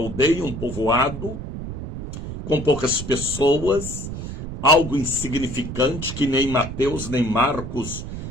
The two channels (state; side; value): noise; right; rumble, 8 dB below the sound